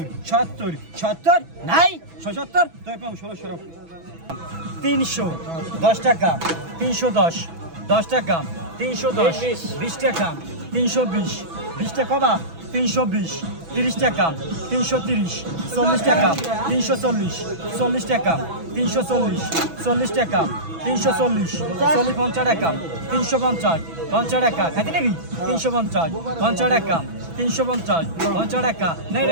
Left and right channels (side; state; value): left; late; 6.1 ms